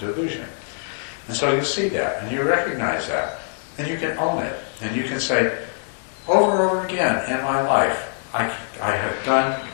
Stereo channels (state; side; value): silent; right; digital silence